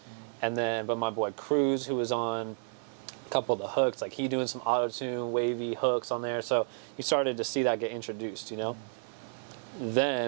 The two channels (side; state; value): left; silent; digital silence